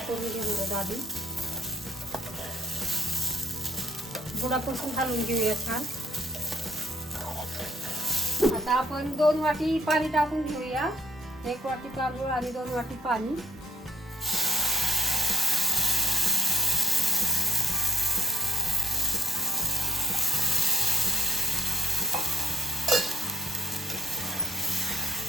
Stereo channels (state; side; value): normal; both; correlation 0.65